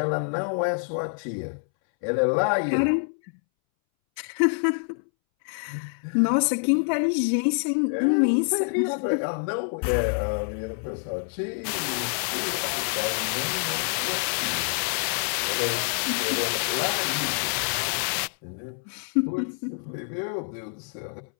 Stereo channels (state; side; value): silent; right; 61 dB below the other